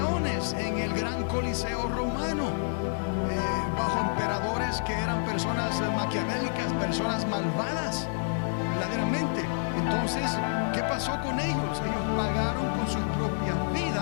en el gran coliseo romano, bajo emperadores que eran personas maquiavélicas, personas malvadas verdaderamente. Entonces, ¿qué pasó con ellos? Ellos pagaron con sus propias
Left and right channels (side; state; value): right; silent; digital silence